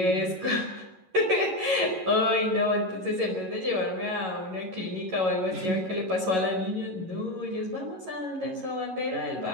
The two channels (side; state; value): left; late; 11 ms